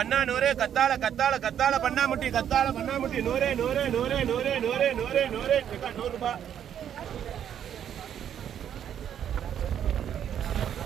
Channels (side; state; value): left; quieter; 9.5 dB